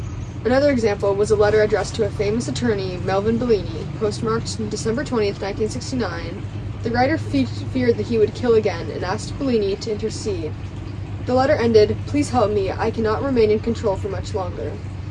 Another example was a letter addressed to a famous attorney, Melvin Bellini, postmarked December 20th, 1969. The writer feared that he would kill again and asked Bellini to intercede. The letter ended, "Please help me, I cannot remain in control for much longer."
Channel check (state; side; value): identical; both; correlation 1.00